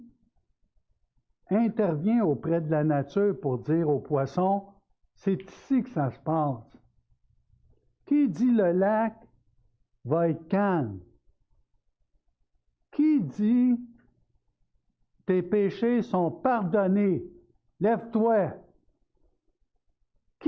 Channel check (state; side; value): identical; both; correlation 1.00